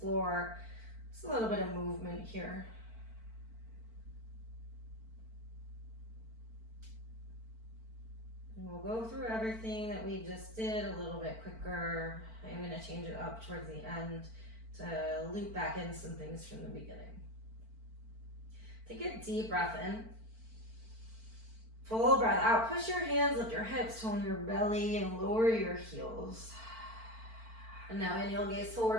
just a little bit of movement here. And we'll go through everything that we just did a little bit quicker. I'm going to change it up towards the end to loop back in some things from the beginning. Take a deep breath in. Full breath out. Push your hands, lift your hips, tone your belly, and lower your heels. And now inhale, gaze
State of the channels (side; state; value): left; late; 4.5 ms